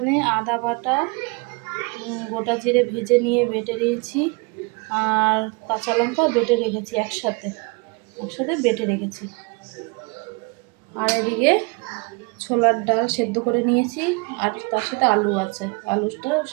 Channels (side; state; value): left; quieter; 29.7 dB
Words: আদা বাটা, গোটা জিরে ভেজে নিয়ে বেটে নিয়েছি, আর কাঁচা লঙ্কা বেটে রেখেছি, একসাথে বেটে রেখেছি। আর এদিকে ছোলার ডাল সেদ্ধ করে নিয়েছি, আর তার সাথে আলু আছে, আলুটা